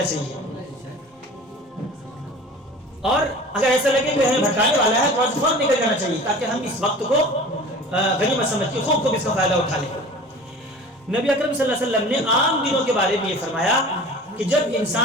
چاہیے۔ اور اگر ایسا لگے کہ ہمیں بھٹکانے والا ہے تو فوراً نکل جانا چاہیے، تاکہ ہم اس وقت کو غنیمت سمجھ کے خوب اس کا فائدہ اٹھا لیں۔ نبی اکرم صلی اللہ علیہ وسلم نے عام دنوں کے بارے میں یہ فرمایا کہ جب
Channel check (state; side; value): normal; both; correlation 0.40